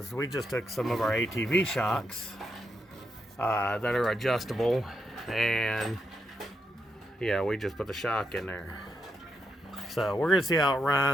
we just took some of our ATV shocks that are adjustable, and we just put the shock in there. So we're gonna see how it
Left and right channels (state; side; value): normal; both; correlation 0.82